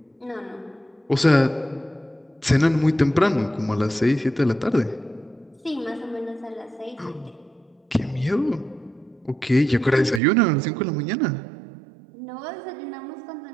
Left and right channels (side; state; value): left; drops out; at 10.2 s